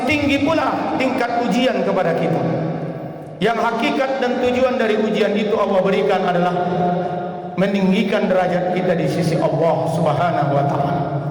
tinggi pula tingkat ujian kepada kita. Yang hakikat dan tujuan dari ujian itu Allah berikan adalah meninggikan derajat kita di sisi Allah Subhanahu wa taala.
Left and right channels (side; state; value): both; identical; correlation 1.00